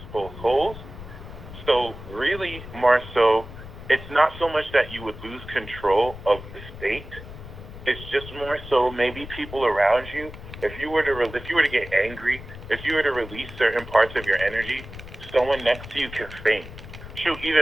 both poles. So really, more so, it's not so much that you would lose control of the state. It's just more so maybe people around you. If you were to get angry, if you were to release certain parts of your energy, someone next to you can faint. Shoot,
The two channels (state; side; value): noise; left; rumble, 13 dB below the sound